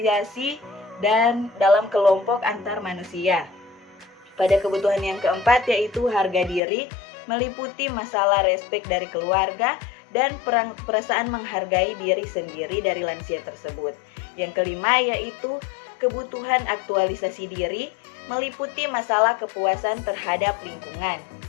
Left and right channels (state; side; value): drops out; right; at 6.6 s